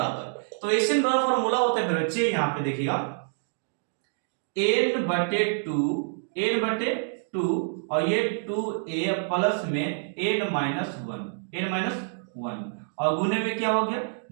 तो एसएन बराबर फॉर्मूला होता है बच्चे यहाँ पे देखिएगा n बटे 2 और ये 2a प्लस में n माइनस 1 और गुने में क्या हो गया,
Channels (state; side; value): silent; left; digital silence